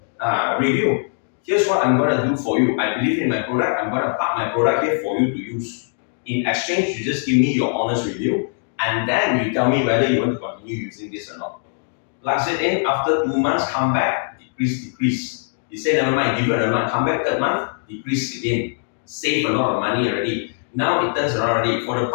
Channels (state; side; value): silent; right; digital silence